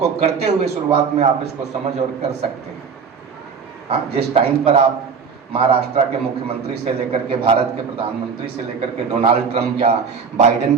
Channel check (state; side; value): quieter; left; 6.0 dB